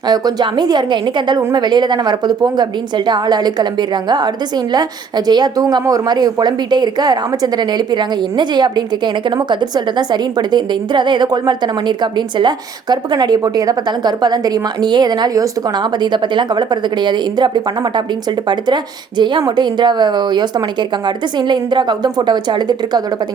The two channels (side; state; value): left; quieter; 5.9 dB